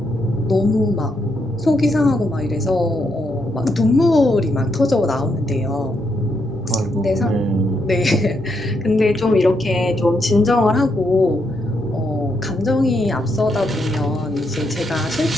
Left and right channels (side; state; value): both; normal; correlation 0.79